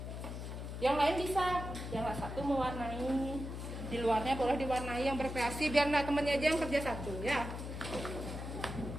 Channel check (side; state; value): left; noise; hum, 7 dB below the sound